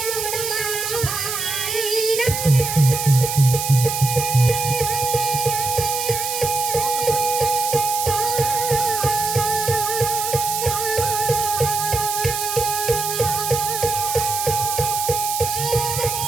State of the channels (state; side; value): noise; right; hiss, 3 dB below the sound